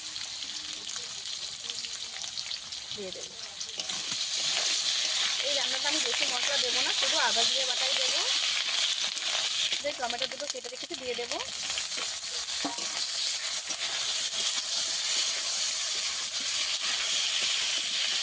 এই রান্নাটা আমি বেশি মশলা দেবো না, শুধু আদা জিরে বাটাই দেবো। যে টমেটো দুটো কেটে রেখেছি দিয়ে দেবো।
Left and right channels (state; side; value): identical; both; correlation 1.00